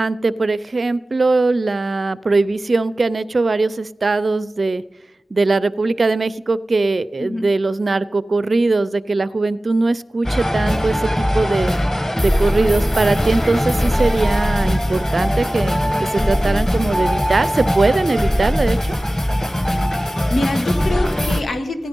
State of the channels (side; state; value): both; normal; correlation 0.97